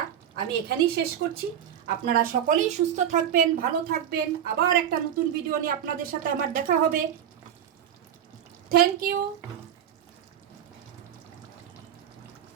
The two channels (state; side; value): quieter; left; 9.7 dB